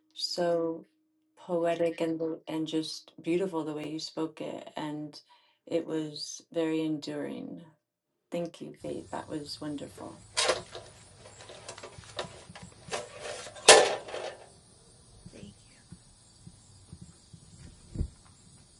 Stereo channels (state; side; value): identical; both; correlation 1.00